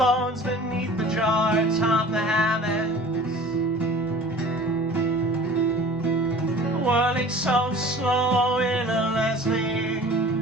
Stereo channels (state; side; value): normal; both; correlation 0.44